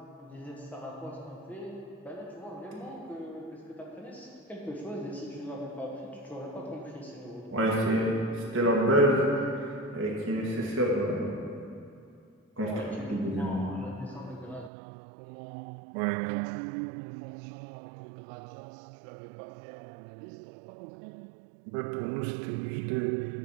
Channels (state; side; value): drops out; left; at 14.7 s